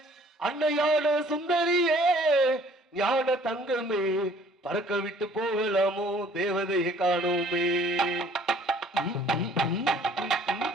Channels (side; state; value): both; normal; correlation 0.56